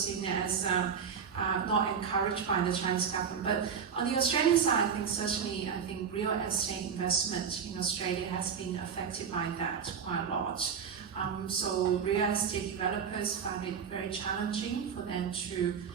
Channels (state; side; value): quieter; left; 6.9 dB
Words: as not encouraged by the Chinese government. But on the Australian side, I think real estate investment in Australia has been affected by that quite a lot. So real estate developers find it very challenging for them to